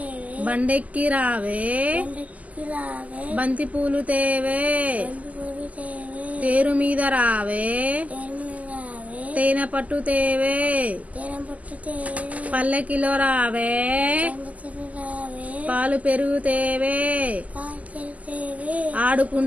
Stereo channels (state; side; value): late; left; 0.074 ms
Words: బండెక్కి రావే బంతి పూలు తేవే తేరు మీద రావే తేనె పట్టు తేవే పల్లెకిలో రావే పాలు పెరుగు తేవే